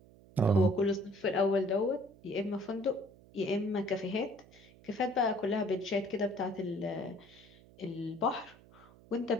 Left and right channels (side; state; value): right; noise; hum, 24 dB below the sound